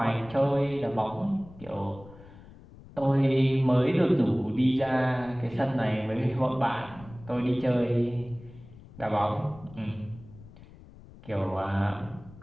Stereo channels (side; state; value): left; noise; rumble, 20 dB below the sound